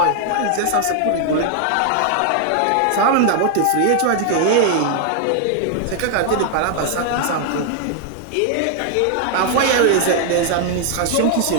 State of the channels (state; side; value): different; both; correlation 0.00